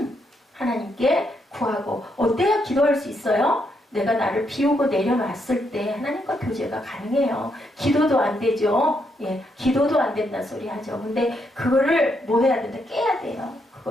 하나님께 구하고 어때야 기도할 수 있어요? 내가 나를 비우고 내려놨을 때 하나님과 교제가 가능해요. 기도도 안 되죠. 예, 기도도 안 된다 소리 하죠. 근데 그거를 뭐 해야 된다? 깨야 돼요.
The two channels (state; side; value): normal; both; correlation 0.78